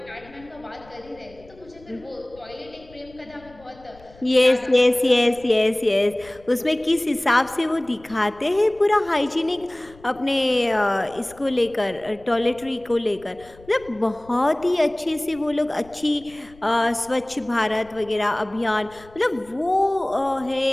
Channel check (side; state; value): left; noise; rumble, 24 dB below the sound